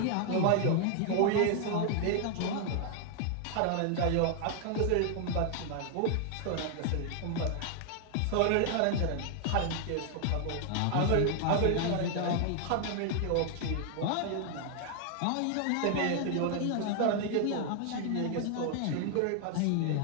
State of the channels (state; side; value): different; both; correlation 0.00